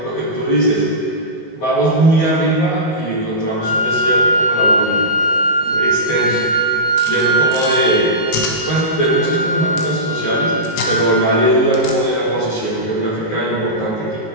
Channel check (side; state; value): right; late; 19 ms